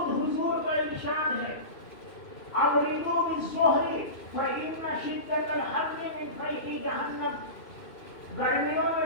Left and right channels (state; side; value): late; right; 2.6 ms